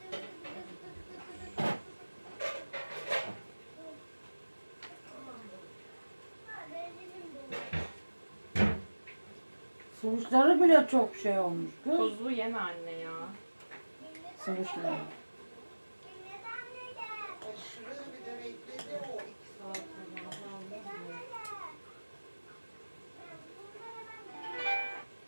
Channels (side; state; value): both; inverted; correlation -1.00